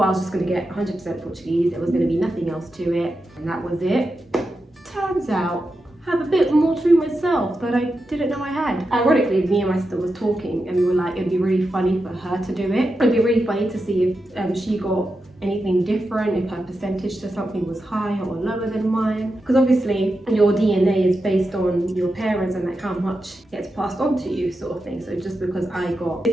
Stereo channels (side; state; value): both; normal; correlation 0.89